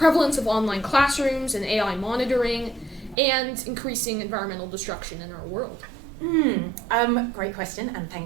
of online classrooms and AI monitoring, and increasing environmental destruction in our world? Great question, and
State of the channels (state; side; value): drops out; left; at 3.2 s